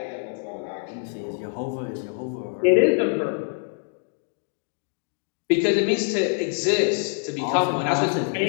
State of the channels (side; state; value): right; silent; digital silence